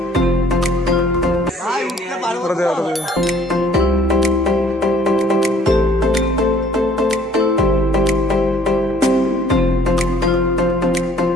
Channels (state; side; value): normal; both; correlation 0.58